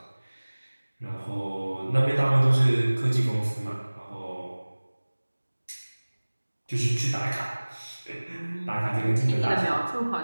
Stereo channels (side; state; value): both; inverted; correlation -1.00